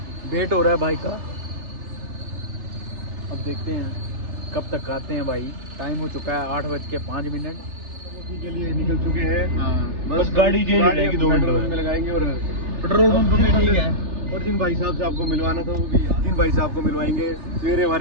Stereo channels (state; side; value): late; left; 3.3 ms